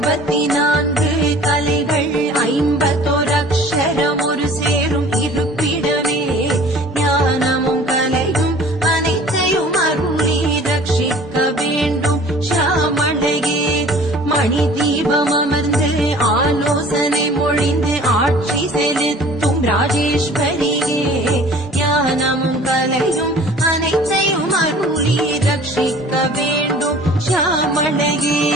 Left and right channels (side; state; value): both; normal; correlation 0.48